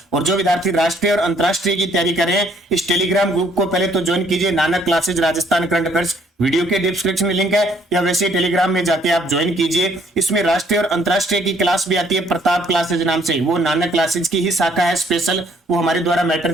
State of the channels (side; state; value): both; normal; correlation 0.64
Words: और जो विद्यार्थी राष्ट्रीय और अंतरराष्ट्रीय की तैयारी कर रहे हैं, इस टेलीग्राम ग्रुप को पहले तो ज्वाइन कीजिए, Nanak classes Rajasthan current affairs, video के डिस्क्रिप्शन में लिंक है, या वैसे टेलीग्राम में जाके आप ज्वाइन कीजिए। इसमें राष्ट्रीय और अंतरराष्ट्रीय की क्लास भी आती है प्रताप क्लासेज नाम से, वो नानक क्लासेज की ही शाखा है स्पेशल, वो हमारे द्वारा मैटर